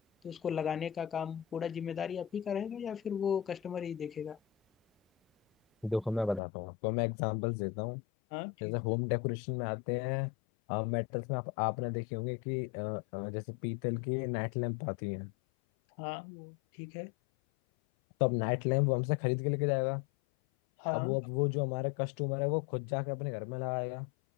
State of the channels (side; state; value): right; drops out; at 6.4 s